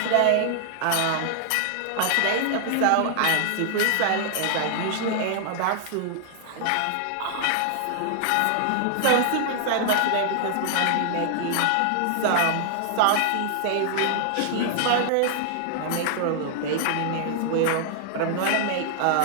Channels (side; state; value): both; different; correlation 0.00